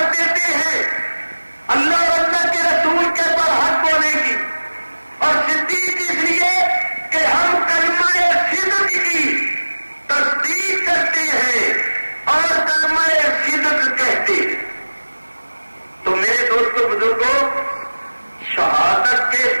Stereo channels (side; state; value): both; inverted; correlation -1.00